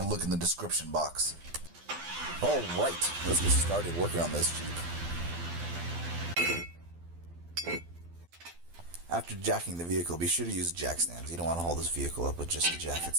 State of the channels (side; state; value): left; late; 12 ms